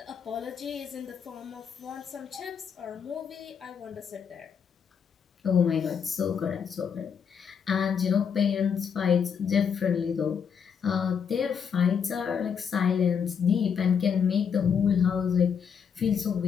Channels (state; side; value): quieter; right; 7.0 dB